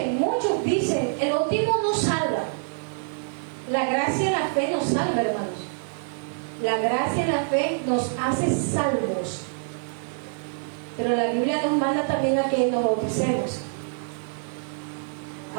dicen, el bautismo no salva. La gracia y la fe nos salva, hermanos. La gracia y la fe nos hace salvos. Pero la Biblia nos manda también a que nos bauticemos.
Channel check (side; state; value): left; silent; digital silence